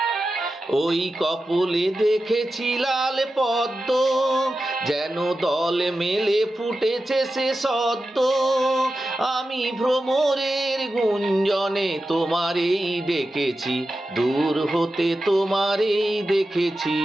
ওই কপলে দেখেছি লাল পদ্ম, যেন দল মেলে ফুটেছে সে সদ্য। আমি ভ্রমরের গুঞ্জনে তোমারেই ডেকেছি, দূর হতে তোমারেই দেখেছি,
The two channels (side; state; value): both; normal; correlation 0.92